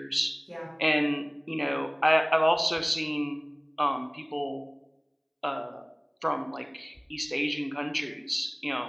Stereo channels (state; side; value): identical; both; correlation 1.00